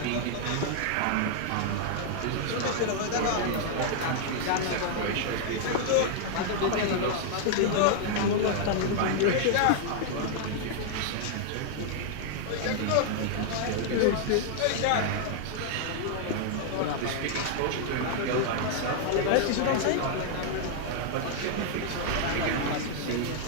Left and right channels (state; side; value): different; both; correlation 0.00